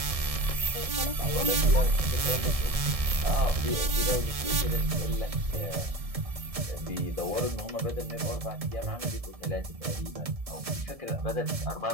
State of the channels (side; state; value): left; late; 1.7 ms